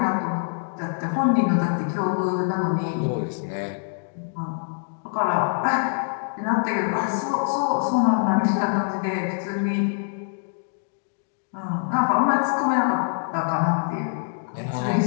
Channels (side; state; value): right; silent; digital silence